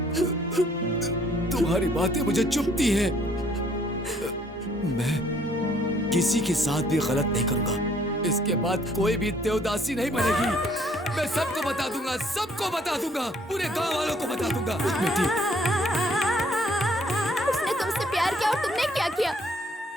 तुम्हारी बातें मुझे चुभती हैं। मैं किसी के साथ भी गलत नहीं करूंगा। इसके बाद कोई भी देवदासी नहीं बनेगी। मैं सबको बता दूंगा, सबको बता दूंगा, पूरे गांव वालों को बता दूंगा। बेटी, उसने तुमसे प्यार किया और तुमने क्या किया?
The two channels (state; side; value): normal; both; correlation 0.63